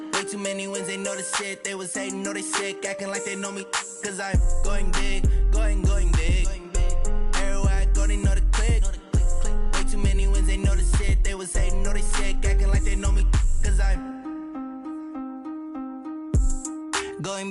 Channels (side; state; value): both; identical; correlation 1.00